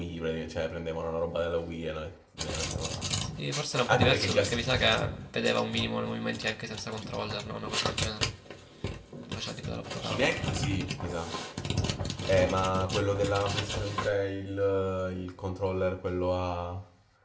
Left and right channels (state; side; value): identical; both; correlation 1.00